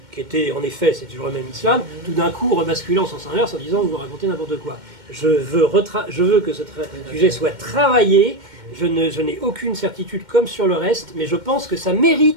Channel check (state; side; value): late; left; 2.1 ms